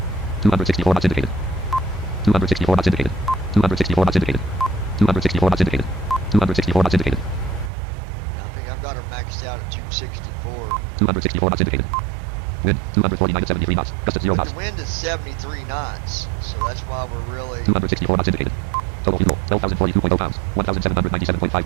264 knots indicated. 264 knots indicated. 264 knots indicated. 264 knots indicated. 264 knots indicated. I think I've got her maxed out at 264. 264 knots indicated. Wind 249 at 73 knots. Gust at 0 But knots. the wind is 73 knots, so that's why we're really... 264 knots indicated. Total fuel 12,042.0 pounds. 1,797.5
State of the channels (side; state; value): left; drops out; at 7.7 s